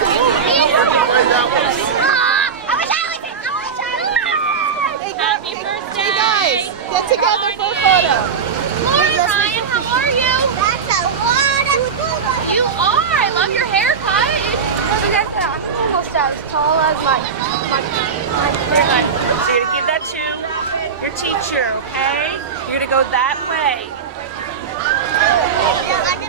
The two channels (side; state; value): left; quieter; 6.2 dB